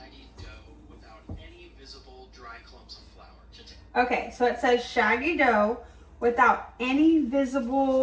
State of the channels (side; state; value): both; identical; correlation 1.00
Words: dough without any visible dry clumps of flour. Okay, so it says shaggy dough without any